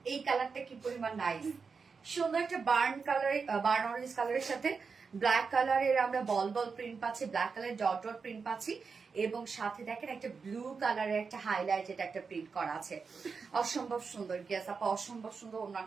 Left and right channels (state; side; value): quieter; left; 5.2 dB